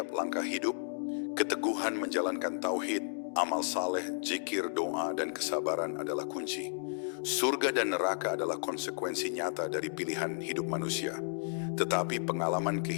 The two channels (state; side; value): silent; right; digital silence